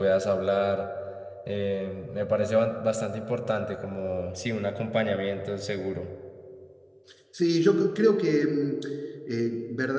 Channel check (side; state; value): both; identical; correlation 1.00